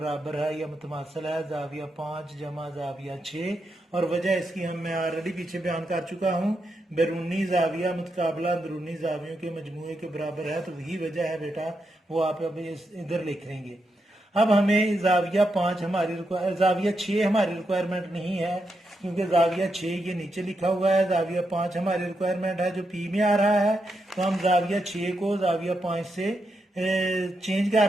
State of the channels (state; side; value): normal; both; correlation 0.84